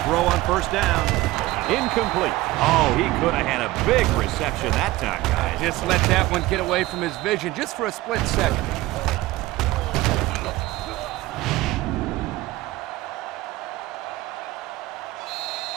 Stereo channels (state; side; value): quieter; left; 18.2 dB